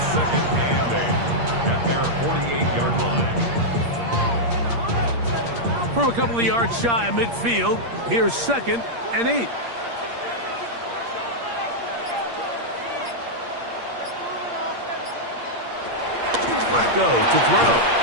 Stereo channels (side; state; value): left; late; 8.6 ms